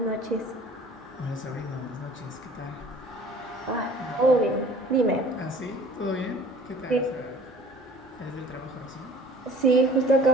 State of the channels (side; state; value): both; normal; correlation 0.49